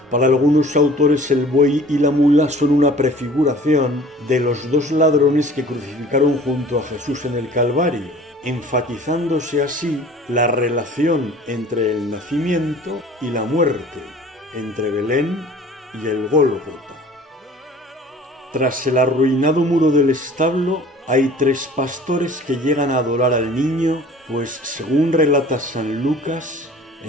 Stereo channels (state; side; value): normal; both; correlation 0.47